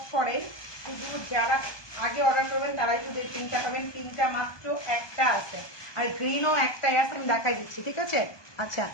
করে, শুধু যারা আগে অর্ডার করবেন তারাই শুধু এই পিঙ্কটা পাবেন, পিঙ্কটা মাত্র একটা আছে, আর গ্রিনও একটাই আছে, আমি দেখাই দিচ্ছি, ঠিক আছে? আচ্ছা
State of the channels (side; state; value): right; late; 1.2 ms